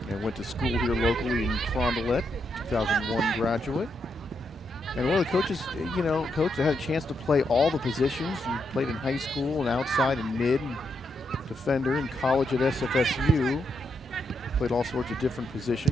And went to school here locally in Carondelet. 2001 graduate. And one of the coaches, coach that had a chance to play all the positions. And played in high school and outside and mid and defender in college at SFSU. Played all sorts of different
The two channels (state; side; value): normal; both; correlation 0.81